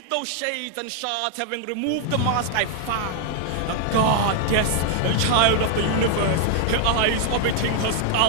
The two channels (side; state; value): both; different; correlation 0.00